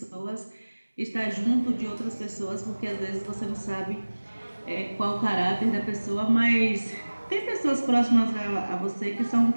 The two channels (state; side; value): inverted; both; correlation -1.00